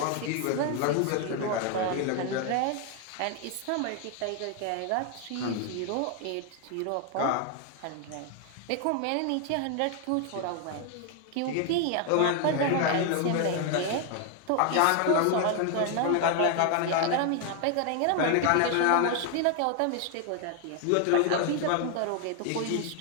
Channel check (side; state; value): both; different; correlation 0.01